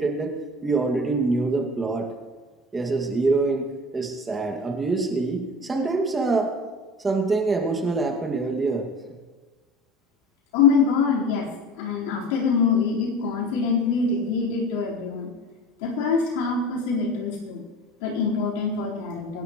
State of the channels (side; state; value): both; normal; correlation 0.37